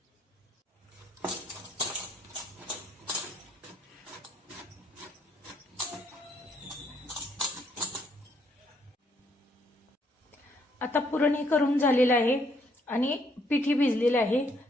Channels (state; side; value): normal; both; correlation 0.69